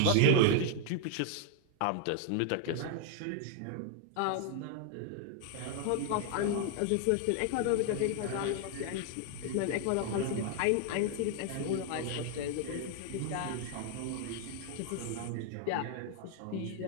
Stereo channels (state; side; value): different; both; correlation 0.00